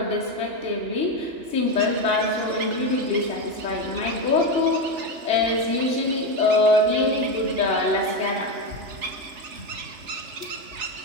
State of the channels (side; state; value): left; late; 3.4 ms